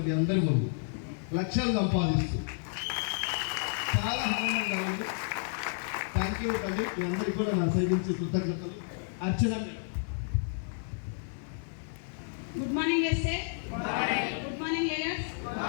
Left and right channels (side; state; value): right; silent; digital silence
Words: మీ అందరి ముందు, లక్షలు సంపాదిస్తూ. చాలా ఆనందంగా ఉంది. థ్యాంక్ యూ తల్లి, మీ అందరికీ కూడా నా సైడ్ నుంచి కృతజ్ఞతలు. Archana madam. Good morning SA. Good morning leaders.